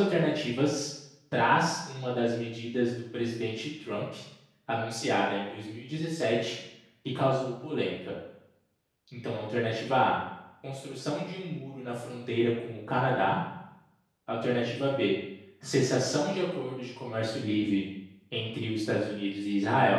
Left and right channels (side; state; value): both; identical; correlation 1.00